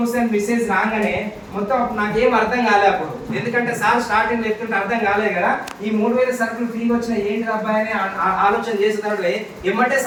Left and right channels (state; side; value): identical; both; correlation 1.00